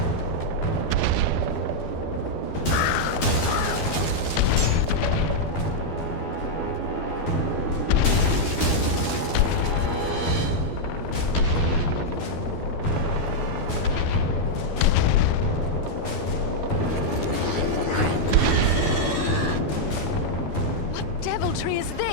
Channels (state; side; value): late; right; 12 ms